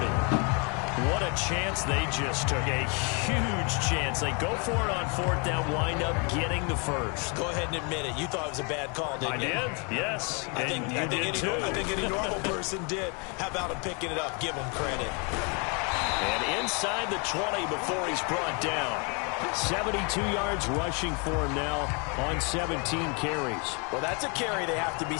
What a chance they just took. A huge chance. They go for it on 4th down, wind up getting the first. Go ahead and admit it. You thought it was a bad call, didn't you? I did, yes. I think any normal person did. How about him picking it up? Give him credit. And inside the 20 before he's brought down. 72 yards rushing for him now on 17 carries. Well, that's a carry they have to be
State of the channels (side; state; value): right; quieter; 34.1 dB